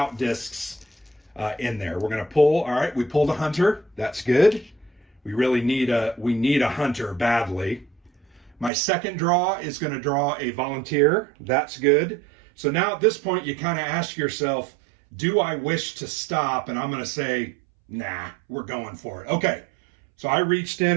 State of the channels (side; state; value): left; drops out; at 8.7 s